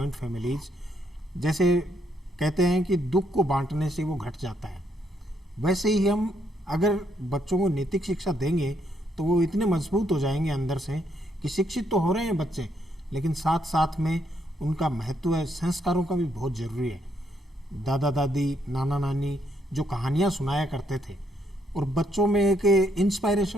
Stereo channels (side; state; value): both; normal; correlation 0.74